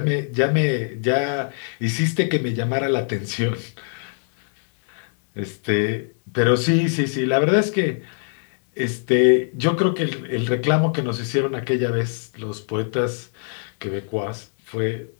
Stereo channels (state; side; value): silent; right; digital silence